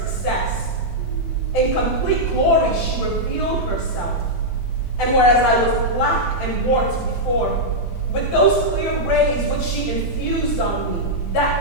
In complete glory she revealed herself, and whereas I was black and warped before, with those clear rays which she infused on me,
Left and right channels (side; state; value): right; late; 25 ms